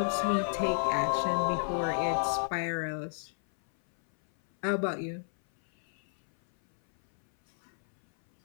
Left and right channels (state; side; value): silent; right; 57 dB below the other